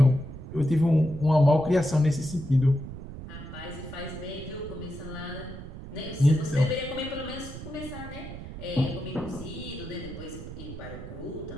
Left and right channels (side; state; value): right; noise; rumble, 11 dB below the sound